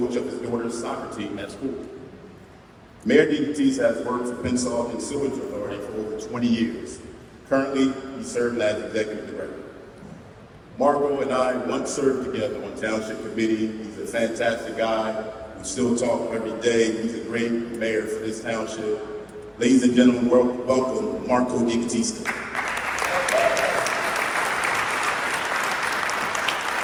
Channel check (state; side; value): identical; both; correlation 1.00